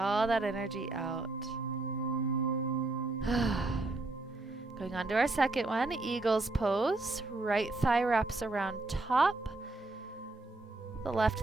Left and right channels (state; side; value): quieter; left; 3.0 dB